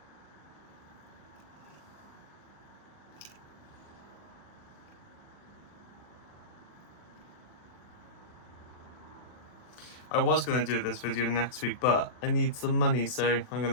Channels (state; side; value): late; right; 39 ms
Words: I was going to do this video next week, but I need some money, so I'm going